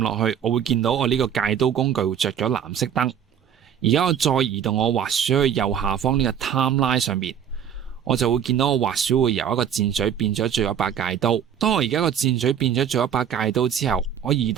去，我會見到我呢個戒刀工具會着咗藍色燈。而家我再移動我滑鼠去右下方呢個 timeline 上面，我就會見到我滑鼠會由一個箭嘴變咗做一把戒刀。當我而家個箭嘴變咗做一把戒刀之後，我移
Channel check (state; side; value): quieter; left; 8.8 dB